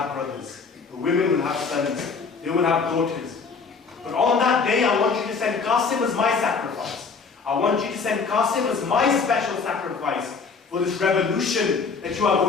brothers. The women will have sons. They will have daughters. But on that day, I want you to send Qasim as my sacrifice. I want you to send Qasim as my special sacrifice for this revolution that you are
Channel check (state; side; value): quieter; right; 5.0 dB